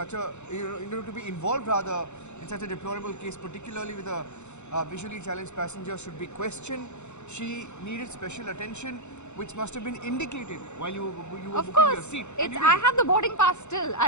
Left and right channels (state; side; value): late; right; 0.83 ms